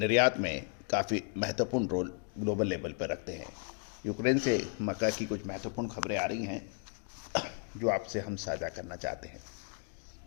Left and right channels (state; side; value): quieter; right; 38.7 dB